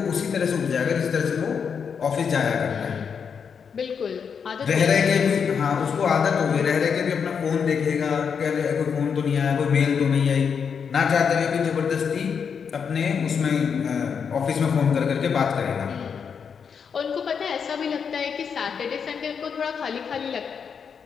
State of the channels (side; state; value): right; quieter; 6.6 dB